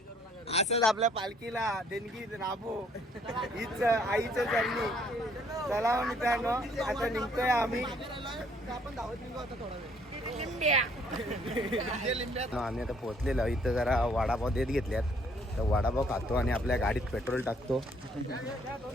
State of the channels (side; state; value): both; normal; correlation 0.64